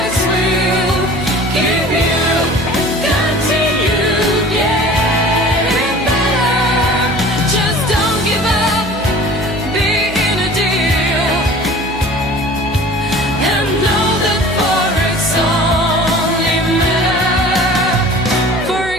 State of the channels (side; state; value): right; noise; hum, 13 dB below the sound